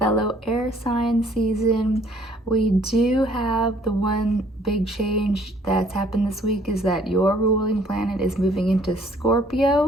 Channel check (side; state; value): both; normal; correlation 0.60